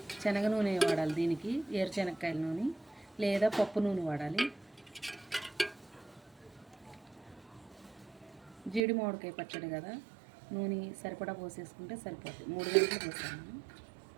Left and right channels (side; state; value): left; drops out; at 8.8 s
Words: శనగ నూనె వాడాలి దీనికి, ఏరుశనగకాయల నూనె లేదా పప్పు నూనె వాడాలి. జీడి మామిడికాయ పచ్చడి కదా, నూనె సరిపడా పోసేసుకుంటే సరిపోతుంది. 3 గంటలు పోసాను.